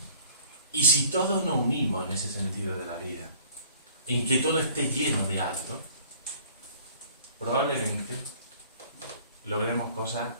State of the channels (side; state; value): both; inverted; correlation -0.52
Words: Y si todos nos unimos en ese sentido de la vida, en que todo esté lleno de algo, probablemente logremos cosas